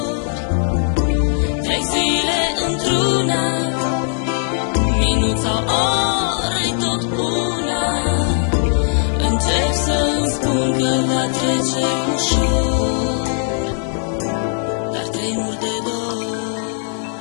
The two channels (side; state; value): right; silent; digital silence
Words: Trec zile într-una, minut sau ore tot una. Încerc să-mi spun că va trece ușor, dar tremur de dor.